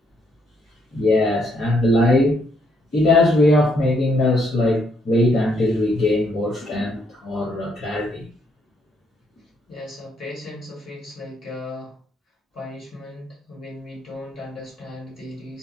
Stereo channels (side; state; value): both; normal; correlation 0.73